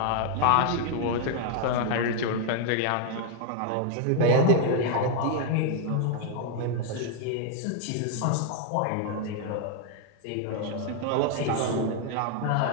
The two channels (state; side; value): different; both; correlation 0.00